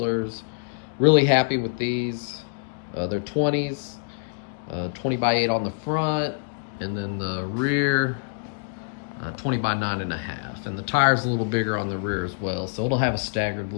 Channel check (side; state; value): right; silent; digital silence